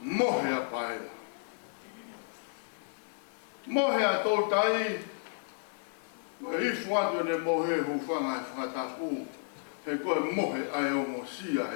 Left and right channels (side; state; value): right; silent; digital silence